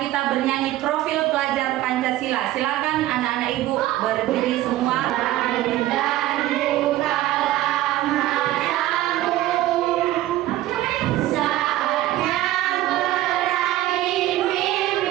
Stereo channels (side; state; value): left; quieter; 15.0 dB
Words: kita bernyanyi profil pelajar Pancasila. Silakan anak-anak ibu berdiri semua.